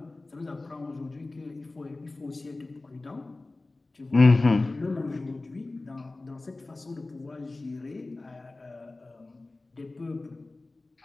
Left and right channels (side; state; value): right; quieter; 3.2 dB